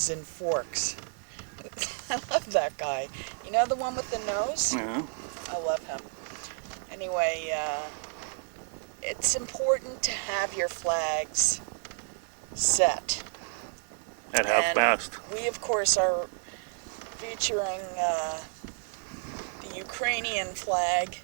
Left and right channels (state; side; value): silent; left; 57 dB below the other